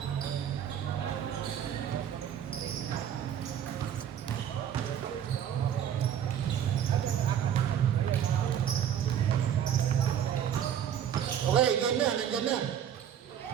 Okay, game na, nandiyan na.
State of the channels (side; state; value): left; quieter; 9.4 dB